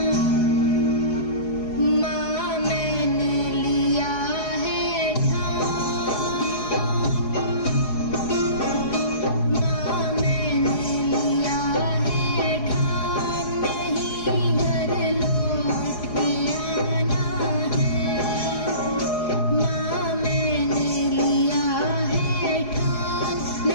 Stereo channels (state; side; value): late; right; 4.8 ms